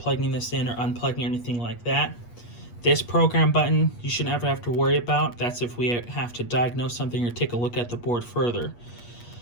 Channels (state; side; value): late; right; 8.4 ms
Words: this in or unplugging or anything like that. This program button, you should never have to worry about. That's if we have to diagnose something or take a look at the board further.